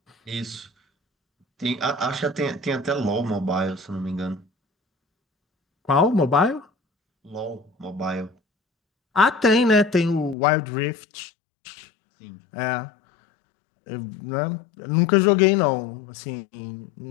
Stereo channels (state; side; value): drops out; right; at 10.4 s